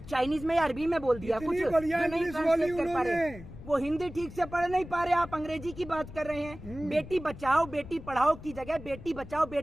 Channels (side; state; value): left; noise; rumble, 14 dB below the sound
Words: चाइनीज में या अरबी में बोल दिया कुछ इतनी बढ़िया जो नहीं इंग्लिश ट्रांसलेट बोली कर पा रहे। उन्होंने। वो हिंदी ठीक से पढ़ नहीं पा रहे, आप अंग्रेजी की बात कर रहे हैं। बेटी बचाओ बेटी पढ़ाओ की जगह बेटी बचाओ